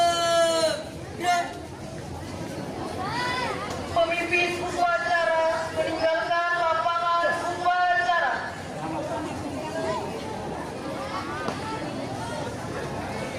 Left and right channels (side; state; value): both; identical; correlation 1.00